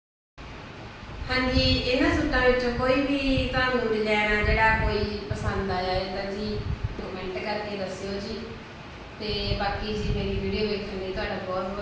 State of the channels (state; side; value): identical; both; correlation 1.00